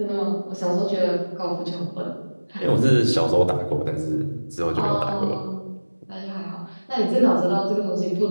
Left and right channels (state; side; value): inverted; both; correlation -1.00